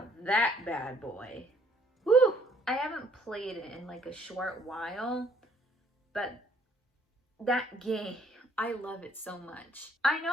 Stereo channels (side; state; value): both; normal; correlation 0.63